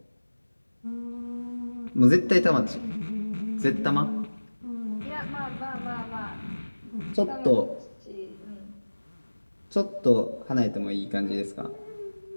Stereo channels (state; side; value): inverted; both; correlation -1.00